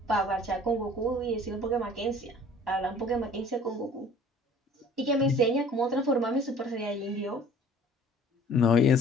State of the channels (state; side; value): normal; both; correlation 0.50